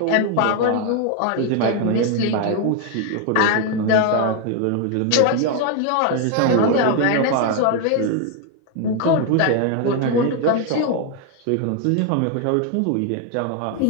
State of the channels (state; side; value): different; both; correlation 0.01